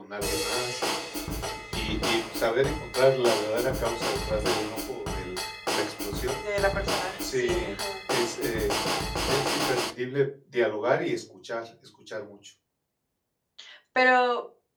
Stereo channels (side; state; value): both; identical; correlation 1.00